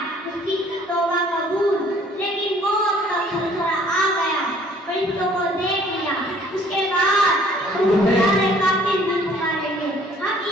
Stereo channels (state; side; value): normal; both; correlation 0.57